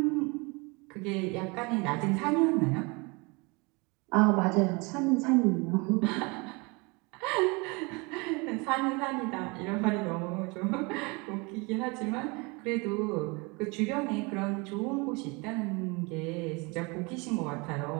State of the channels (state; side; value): quieter; left; 28.1 dB